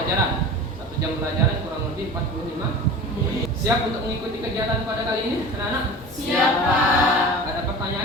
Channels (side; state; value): both; normal; correlation 0.36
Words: 1 jam pelajaran kurang lebih 45 menit. Siap untuk mengikuti kegiatan pada kali ini, anak-anak? Siap, Pak. Ada